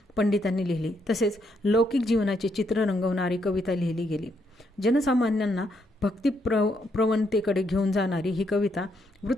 पंडितांनी लिहिली. तसेच लौकिक जीवनाचे चित्र रंगवणारी कविता लिहिली गेली. जनसामान्यांना भक्ती प्रवणतेकडे घेऊन जाणारी ही कविता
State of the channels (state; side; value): normal; both; correlation 0.76